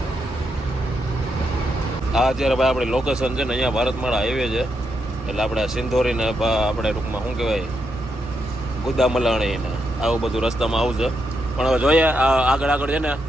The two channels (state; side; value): normal; both; correlation 0.82